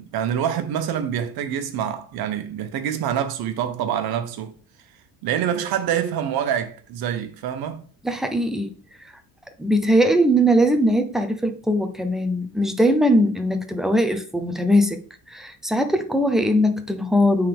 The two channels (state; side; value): normal; both; correlation 0.65